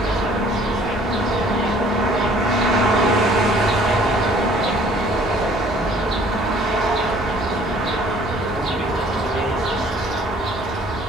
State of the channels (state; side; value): normal; both; correlation 0.55